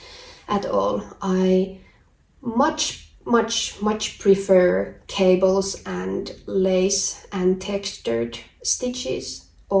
at all. I much prefer cables and lace and textured stitches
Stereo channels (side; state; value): both; identical; correlation 1.00